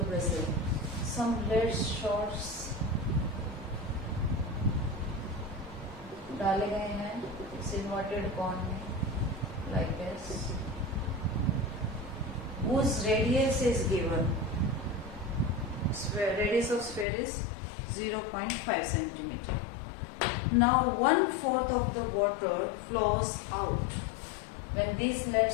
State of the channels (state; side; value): drops out; right; at 17.1 s